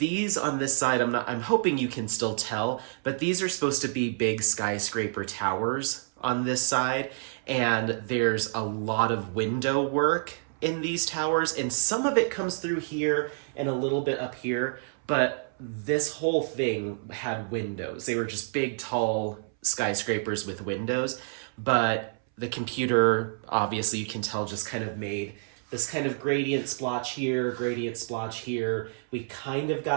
on this side. I'm hoping you can still tell, but these are supposed to be big skyscraper towers on this side, and there's a lot of window work in these towers, and some of it comes through here and a little bit up here, but this whole thing had windows. They were just big, tall skyscrapers with windows, but the computer, obviously you can tell, just kind of made this kind of gradient splotch here, gradient splotch here. We kind of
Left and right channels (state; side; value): silent; left; 59 dB below the other